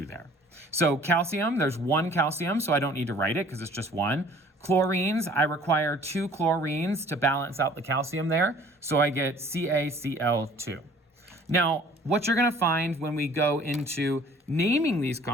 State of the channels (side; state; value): both; normal; correlation 0.53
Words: there. So calcium, there's 1 calcium, so I don't need to write it because it's just 1. Chlorines, I require 2 chlorines to balance out the calcium there, so I get CaCl2. Now, what you're going to find when we go into naming these